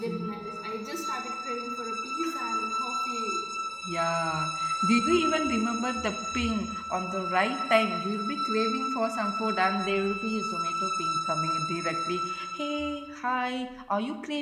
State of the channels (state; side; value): identical; both; correlation 1.00